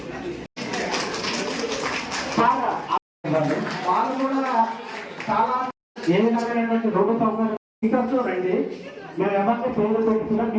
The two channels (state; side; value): identical; both; correlation 1.00